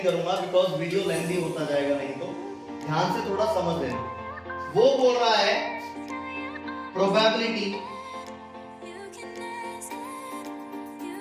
करूंगा बिकॉज वीडियो लेंथी होता जाएगा, नहीं तो ध्यान से थोड़ा समझ लेना। वो बोल रहा है probability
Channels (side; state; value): both; identical; correlation 1.00